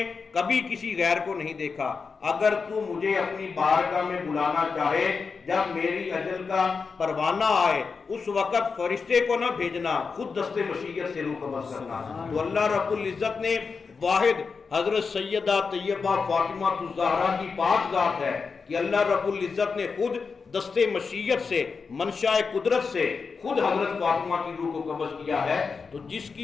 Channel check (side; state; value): right; quieter; 5.0 dB